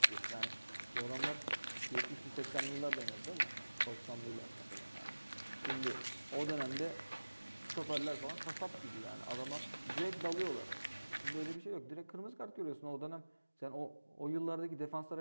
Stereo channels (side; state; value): both; inverted; correlation -1.00